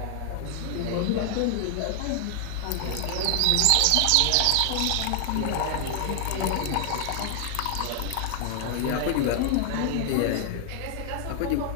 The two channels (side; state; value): both; different; correlation 0.00